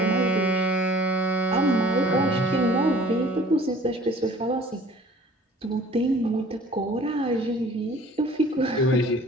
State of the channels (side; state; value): both; normal; correlation 0.50